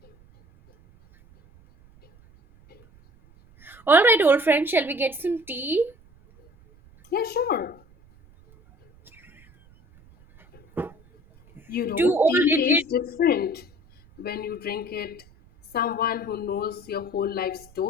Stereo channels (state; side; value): noise; right; rumble, 27 dB below the sound